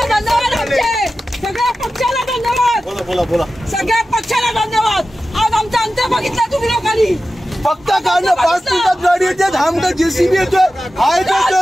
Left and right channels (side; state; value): both; normal; correlation 0.94